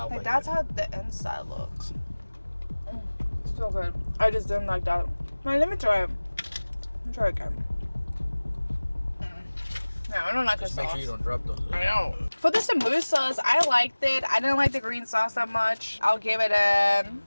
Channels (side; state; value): both; inverted; correlation -1.00